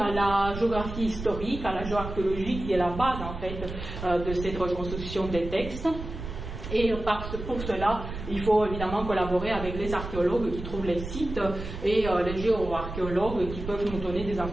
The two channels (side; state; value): right; noise; rumble, 8 dB below the sound